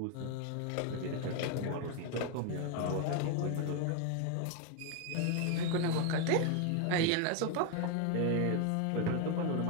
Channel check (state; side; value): different; both; correlation 0.01